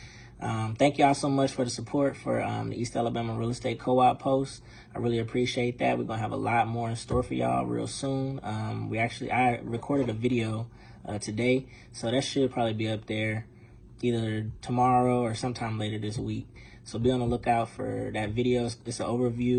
Thank y'all so much for the support for the East Alabama Real Estate Co-op post. I really appreciate that. We're gonna have a lot more in store for y'all real soon. I recorded a video today, so that should probably be up there either tomorrow or sometime later this week. So be on the lookout for that video. It's a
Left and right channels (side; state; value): both; identical; correlation 1.00